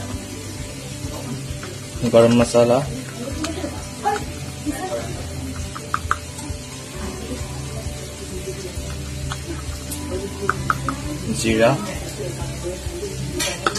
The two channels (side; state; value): both; identical; correlation 1.00